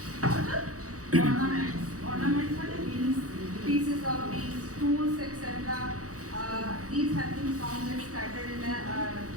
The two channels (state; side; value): late; left; 0.66 ms